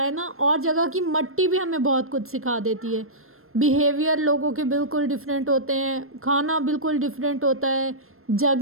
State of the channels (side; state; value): left; late; 0.62 ms